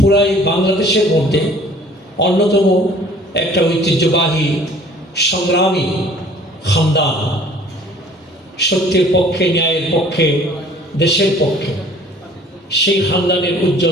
বাংলাদেশের মধ্যে অন্যতম একটা ঐতিহ্যবাহী সংগ্রামী খানদান, সত্যের পক্ষে, ন্যায়ের পক্ষে, দেশের পক্ষে। সেই খানদানের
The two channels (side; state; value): both; normal; correlation 0.52